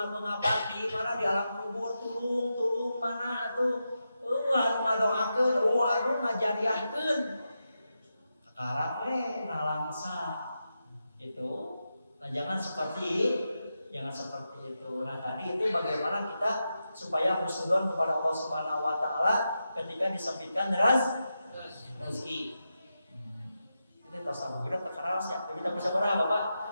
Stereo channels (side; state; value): both; inverted; correlation -0.89